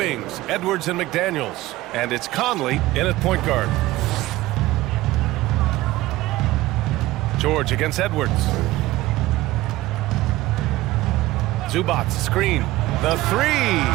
Edwards and McDaniels. And it's Conley in at point guard. George against Edwards. Zubac, screen. The 3.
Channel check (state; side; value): quieter; left; 17.5 dB